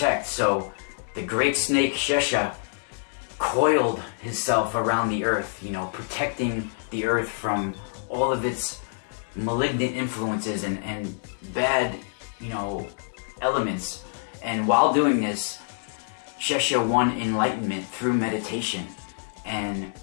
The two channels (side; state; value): right; silent; 61 dB below the other